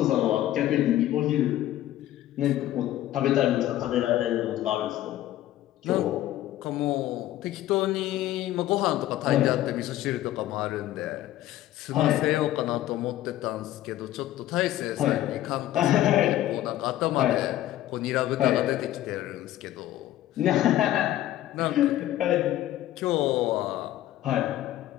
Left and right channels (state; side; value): quieter; right; 13.8 dB